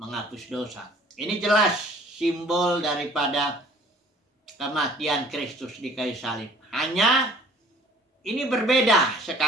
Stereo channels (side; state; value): both; normal; correlation 0.53